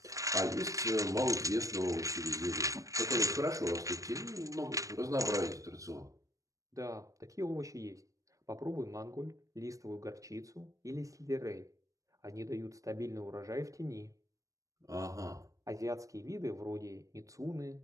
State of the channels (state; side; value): late; left; 0.16 ms